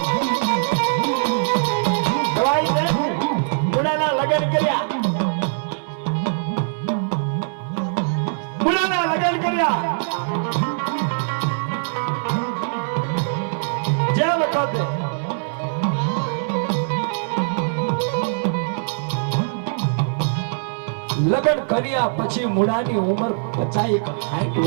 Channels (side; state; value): left; silent; digital silence